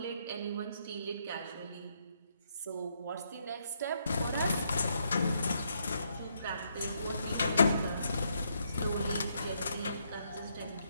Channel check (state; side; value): inverted; both; correlation -0.75